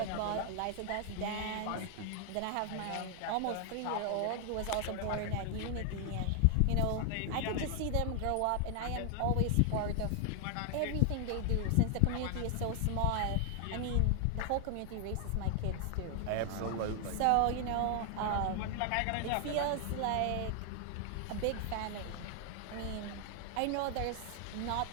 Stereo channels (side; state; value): both; different; correlation 0.00